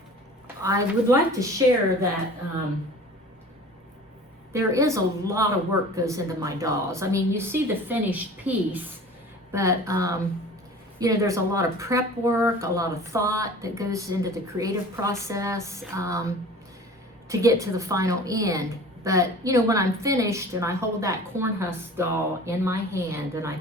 I would like to share that there is a lot of work goes into my dolls. I mean, you see the finished piece, but you know, there's a lot of prep work, a lot of thought that goes into the creative process to get to the final end. But, you know, when I'm finished and I hold that corn husk doll in my hand and I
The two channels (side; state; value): both; normal; correlation 0.42